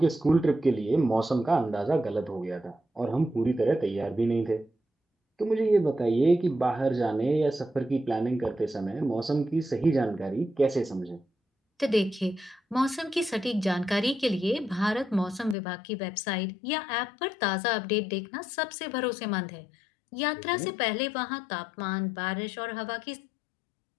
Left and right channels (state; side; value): drops out; right; at 15.6 s